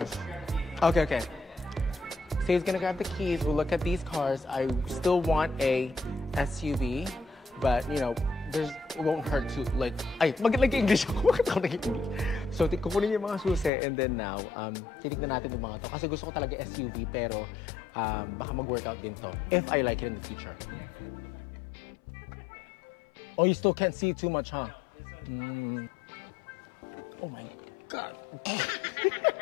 Okay. So he's gonna grab the keys. We'll look at these cars. I still want a SUV, but you know, it won't hurt to like. Ay, mag-English ako. Bakit ako nag-English? So kukunin yung mga susi, and then now, titignan natin yung mga to. Kasi gusto ko talaga SUV, pero baka mag-workout din to. If I like it in the future. Oh, you still can't see too much, huh? Oh my God.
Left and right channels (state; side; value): drops out; right; at 13.7 s